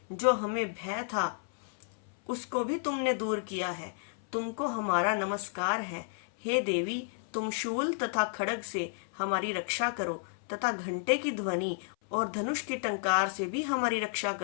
जो हमें भय था उसको भी तुमने दूर किया है। तुमको हमारा नमस्कार है। हे देवी, तुम शूल तथा खड्ग से हमारी रक्षा करो तथा घंटे की ध्वनि और धनुष की टंकार से भी हमारी रक्षा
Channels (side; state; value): right; silent; 57 dB below the other